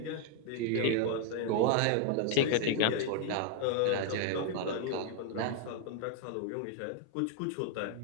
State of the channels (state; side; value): different; both; correlation 0.00